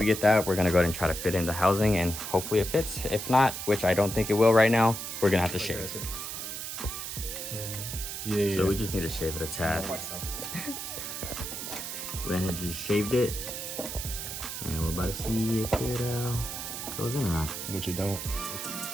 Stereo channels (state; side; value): noise; right; hiss, 6 dB below the sound